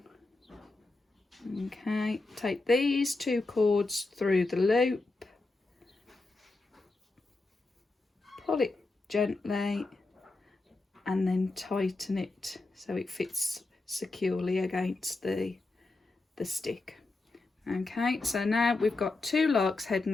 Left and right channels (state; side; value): quieter; right; 3.3 dB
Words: Okay, take these 2 cords through the loop, pull it gently and then tighten it so it fits securely against the stick. Okay, so now we've got 2 lark's head